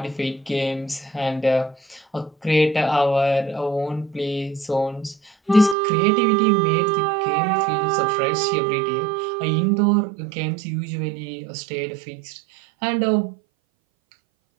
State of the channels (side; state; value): left; drops out; at 5.8 s